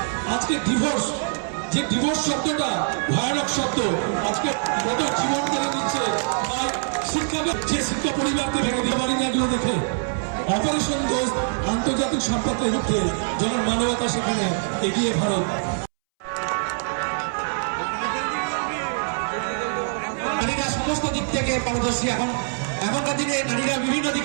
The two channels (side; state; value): left; silent; 63 dB below the other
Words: আজকে ডিভোর্স, যে ডিভোর্স শব্দটা ভয়ানক শব্দ, আজকে কত জীবন কেড়ে দিচ্ছে। তাই শিক্ষা, যে শিক্ষা পরিবারকে ভেঙে দিয়ে পারি না, এগুলো দেখে অপারেশন দোস্ত আন্তর্জাতিক সম্পর্কের রূপে যখন মানবতা সেখানে এগিয়ে ভারত। নারীরা সমস্ত দিক থেকে পারদর্শী। এখনকার দিনে নারীরা বিভিন্ন